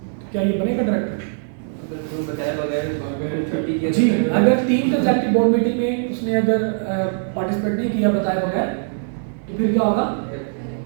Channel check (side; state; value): left; silent; digital silence